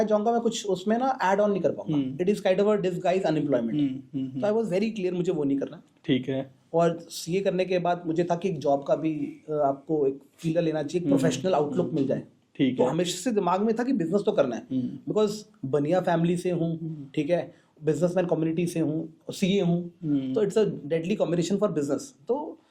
जाऊंगा मैं कुछ उसमें ना ऐड ऑन नहीं कर पाऊंगा, it is kind of a disguise unemployment. तो आई वाज वेरी क्लियर मुझे वो नहीं करना। ठीक है। और सीए करने के बाद मुझे था कि एक जॉब का भी आपको एक फीलर लेना चाहिए, एक प्रोफेशनल आउटलुक मिल जाए। ठीक तो है। हमेशा से दिमाग में था कि बिजनेस तो करना है, बिकॉज बनिया फैमिली से हूँ, ठीक है, बिजनेसमैन कम्युनिटी से हूँ, सीए हूँ, तो it's a deadly combination for business. तो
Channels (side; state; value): both; identical; correlation 1.00